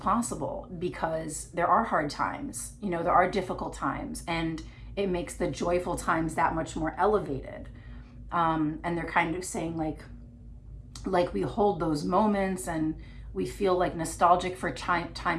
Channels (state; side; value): identical; both; correlation 1.00